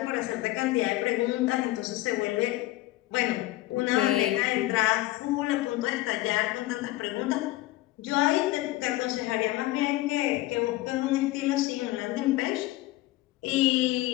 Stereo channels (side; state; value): right; quieter; 17.6 dB